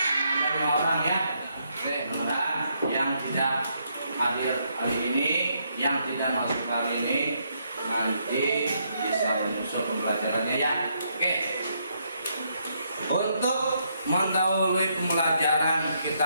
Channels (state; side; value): inverted; both; correlation -0.75